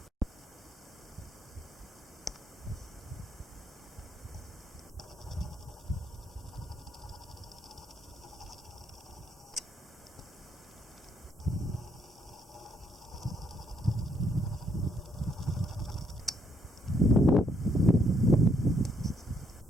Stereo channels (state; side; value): normal; both; correlation 0.72